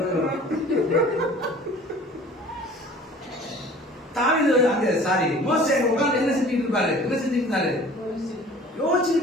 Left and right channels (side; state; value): both; normal; correlation 0.47